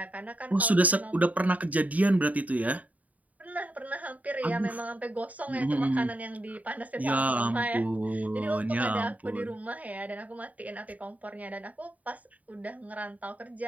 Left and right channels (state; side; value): late; left; 0.073 ms